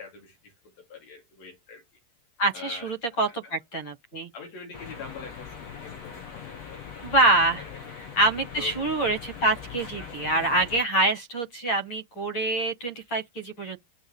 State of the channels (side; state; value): right; late; 8.6 ms